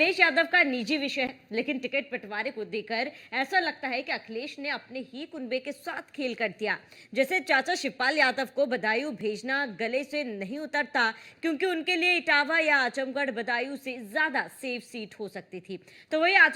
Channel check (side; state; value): both; identical; correlation 1.00